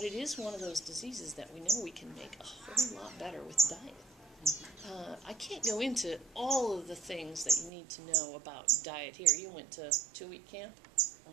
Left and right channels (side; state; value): left; drops out; at 7.7 s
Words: it is one of those diseases that we know we can make a whole lot better with diet. I can't go into all of the things that you need to know about diet here. You went to 2-week camp?